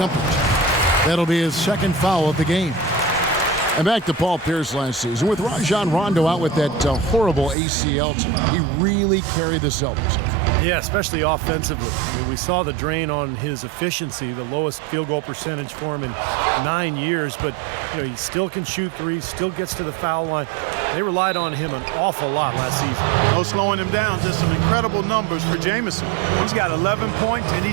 That'll be his second foul of the game. And back to Paul Pierce last season. With Rajon Rondo out with that horrible ACL team, he really carried the Celtics. Yeah, especially offensively. I mean, we saw the drain on his efficiency, the lowest field goal percentage for him in 9 years, but you know, he still can shoot threes, still gets to the foul line. They relied on him an awful lot last season. No slowing him down, just some incredible numbers for Jamison. He's got 11 points, and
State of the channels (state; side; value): drops out; left; at 7.6 s